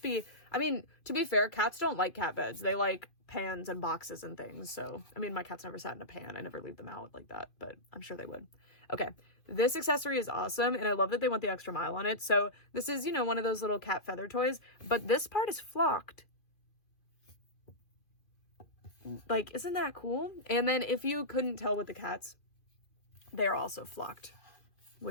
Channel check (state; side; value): late; right; 2.5 ms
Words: be, I mean, to be fair, cats don't like cat beds. They like pans and boxes and things. So, I mean, my cat's never sat in a pan. I never leave them out like that, but I'm sure they would. Okay, this accessory is awesome, and I love that they went the extra mile on it. So this is, you know, one of those little cat feather toys, but this part is flocked. Like, isn't that cool? And then if you couldn't tell with the cats, they're also flocked,